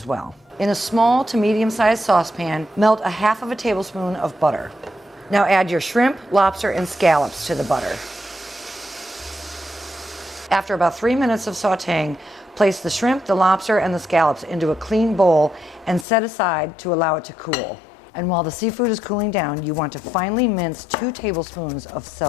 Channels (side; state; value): right; drops out; at 16.1 s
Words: well. In a small to medium-sized saucepan, melt 1/2 tablespoon of butter. Now add your shrimp, lobster, and scallops to the butter. After about 3 minutes of sautéing, place the shrimp, the lobster, and the scallops into a clean bowl and set aside to allow it to cool. And while the seafood is cooling down, you want to finely mince 2 tablespoons of